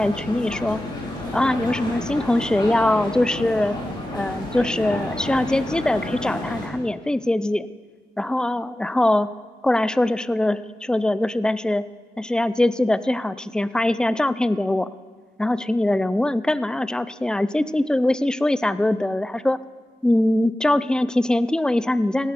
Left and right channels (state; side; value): normal; both; correlation 0.95